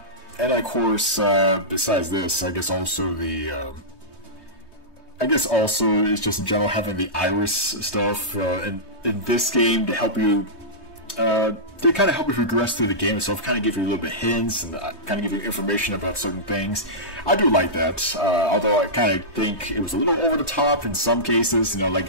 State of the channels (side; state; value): right; late; 1.2 ms